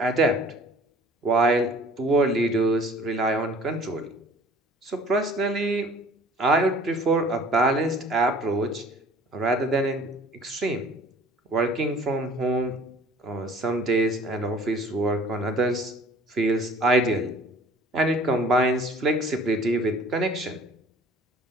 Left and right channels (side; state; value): both; normal; correlation 0.51